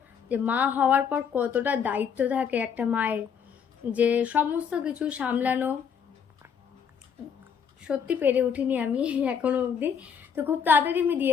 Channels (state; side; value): quieter; right; 7.1 dB